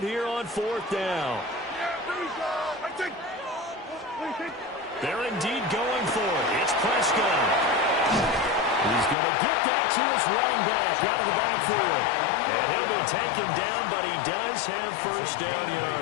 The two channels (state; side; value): drops out; right; at 9.2 s